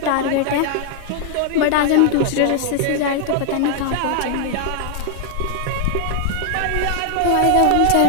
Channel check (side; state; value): both; different; correlation 0.00